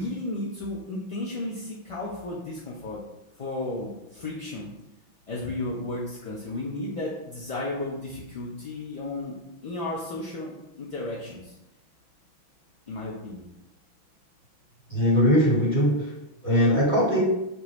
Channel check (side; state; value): left; late; 6.0 ms